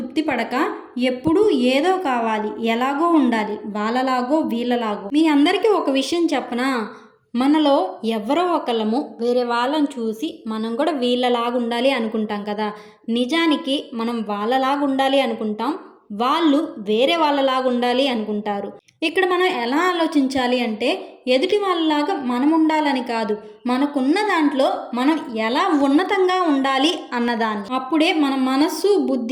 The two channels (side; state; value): both; identical; correlation 1.00